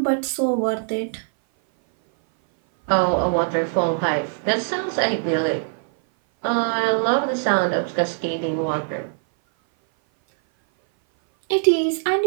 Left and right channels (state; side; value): silent; left; 58 dB below the other